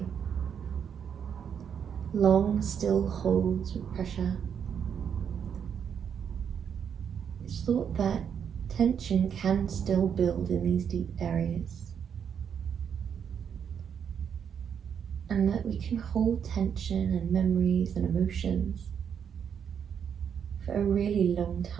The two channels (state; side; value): quieter; left; 7.8 dB